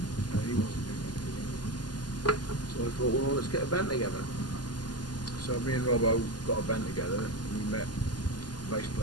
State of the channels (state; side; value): late; right; 0.70 ms